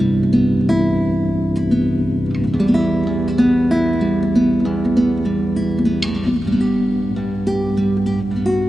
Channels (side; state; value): left; noise; hum, 15 dB below the sound